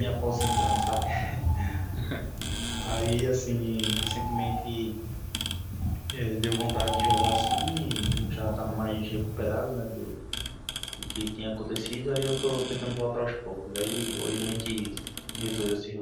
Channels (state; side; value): identical; both; correlation 1.00